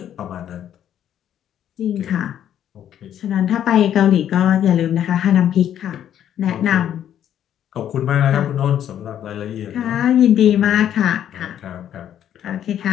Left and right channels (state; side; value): quieter; right; 10.3 dB